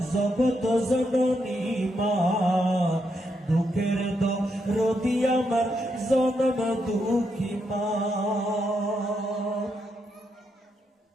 জগত জননী মা দুঃখের দরদি আমার জনম দুঃখী মা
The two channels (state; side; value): normal; both; correlation 0.80